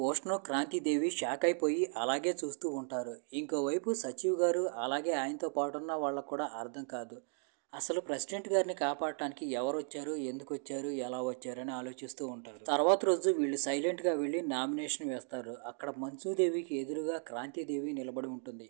క్రాంతిదేవి షాక్ అయిపోయి అలాగే చూస్తూ ఉంటారు. ఇంకోవైపు సచివ్ గారు అలాగే ఆయనతో పాటున్న వాళ్ళకు కూడా అర్థం కాదు. అసలు ప్రెసిడెంట్ గారిని కాపాడటానికి ఎవరు వచ్చారు, ఎందుకు వచ్చారు, ఎలా వచ్చారు అని ఆలోచిస్తూ ఉంటారు. తర్వాత రోజు వీళ్ళు సైలెంట్గా వెళ్ళి నామినేషన్ వేస్తారు. అక్కడ మంచుదేవికి ఎదురుగా క్రాంతిదేవి నిలబడి ఉంటుంది.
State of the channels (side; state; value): left; silent; 54 dB below the other